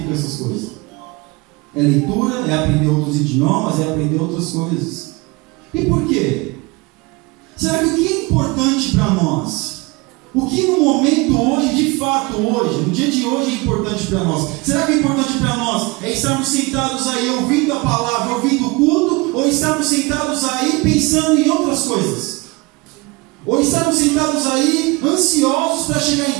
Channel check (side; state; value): left; quieter; 25.2 dB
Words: com essas coisas. É leitura, é aprender outros idiomas, é aprender outras coisas. E por quê? Será que o que é importante para nós? O que no momento hoje, de fato hoje, no dia de hoje é importante para nós? Será que é importante para nós é estarmos sentados aí ouvindo a palavra, ouvindo o culto, ou estarmos sentados aí pensando em outras coisas? Ou estarmos sentados aí ansiosos para chegar